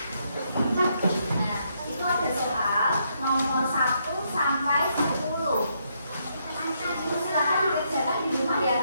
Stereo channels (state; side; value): inverted; both; correlation -0.76